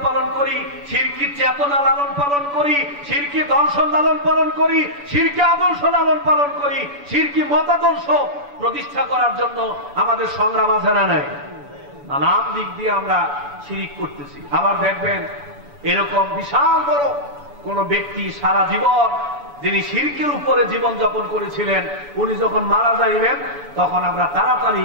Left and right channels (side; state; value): left; late; 7.0 ms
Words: পালন করি, শিরকি চেতনা লালন পালন করি, শিরকি দর্শন লালন পালন করি, শিরকি আদর্শ লালন পালন করি, শিরকি মতাদর্শ প্রতিষ্ঠা করার জন্য আমাদের সংগ্রাম আছে না নাই? নানান দিক দিয়ে আমরা শিরিক করতেছি। আবার দেখবেন এরকম বিশাল বড় কোন ব্যক্তি সারা জীবন যিনি শিরকের উপরে জীবন যাপন করেছিলেন, উনি যখন মারা যাইবেন তখন আমরা তাড়াতাড়ি